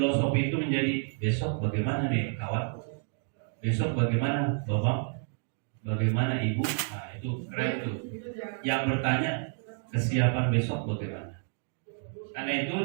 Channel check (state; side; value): silent; left; 58 dB below the other